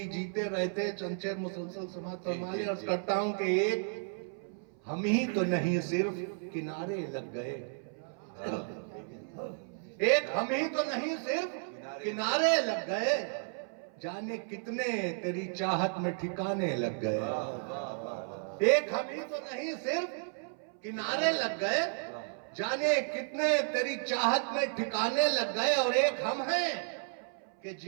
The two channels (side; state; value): left; silent; 56 dB below the other